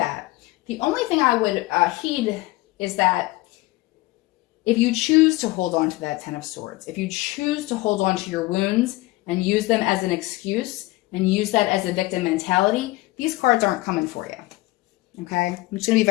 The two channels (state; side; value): quieter; right; 19.9 dB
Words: The only thing I would heed is that if you choose to hold on to that Ten of Swords, if you choose to hold on to your wounds and use them as an excuse and use that as a victim mentality, these cards aren't coming for you. Okay? I'm just going to be